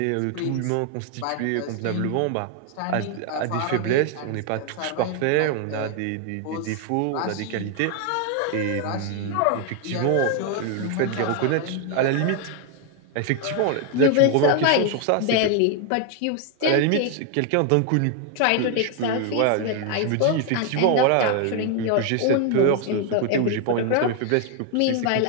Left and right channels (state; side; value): different; both; correlation 0.00